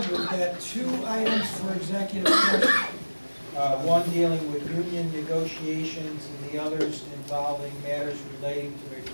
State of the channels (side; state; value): both; inverted; correlation -1.00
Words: we've got 2 items for executive session. One dealing with union negotiations and the others involving matters relating to a